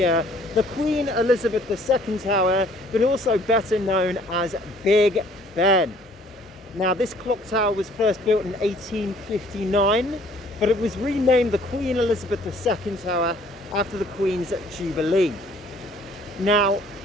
the Queen Elizabeth II Tower, but also better known as Big Ben. Now, this clock tower was first built in 1859, but it was renamed the Queen Elizabeth II Tower after the Queen's Jubilee. Now,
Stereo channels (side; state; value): both; normal; correlation 0.58